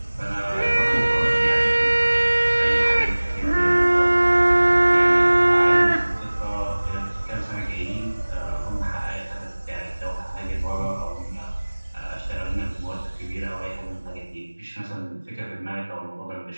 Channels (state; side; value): inverted; both; correlation -1.00